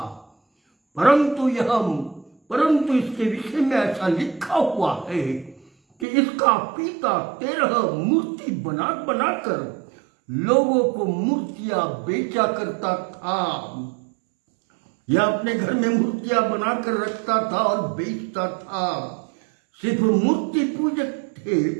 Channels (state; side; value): drops out; left; at 6.1 s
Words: परंतु यह परंतु इसके विषय में ऐसा लिखा हुआ है कि इसका पिता 13 मूर्ति बना बनाकर लोगों को मूर्तियां बेचा करता था। यह अपने घर में मूर्तियां बनाकर रखता था और बेचता था। सिर्फ मूर्ति पूजक थे,